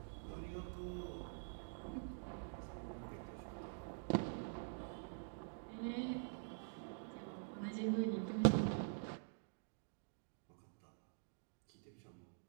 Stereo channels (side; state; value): left; silent; digital silence